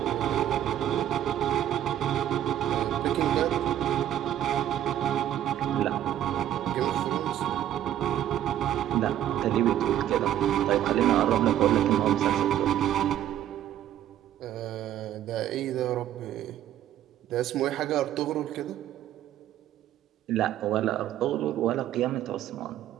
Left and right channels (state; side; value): quieter; left; 11.6 dB